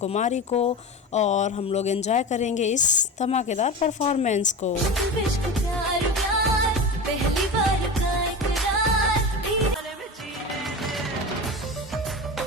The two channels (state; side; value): normal; both; correlation 0.27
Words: को, और हम लोग एंजॉय करेंगे इस धमाकेदार परफॉर्मेंस को। पहली बार